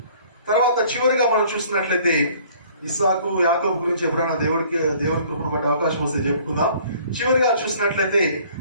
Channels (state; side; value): inverted; both; correlation -0.55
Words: తర్వాత చివరిగా మనం చూసినట్లయితే ఇస్సాకు, యాకోబు గురించి ఎప్పుడైనా దేవుని కృపను బట్టి అవకాశం వస్తే చెప్పుకుందాం. చివరిగా చూసినట్లయితే